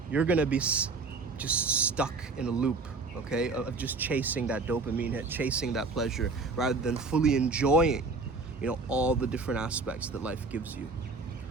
you're gonna be just stuck in a loop, okay, of just chasing that dopamine hit, chasing that pleasure, rather than fully enjoying, all the different aspects that life gives you.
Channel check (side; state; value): left; quieter; 3.9 dB